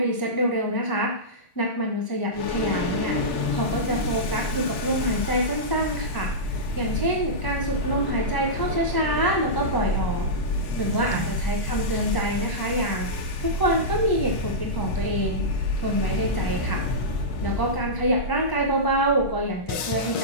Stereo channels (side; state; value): right; late; 1.1 ms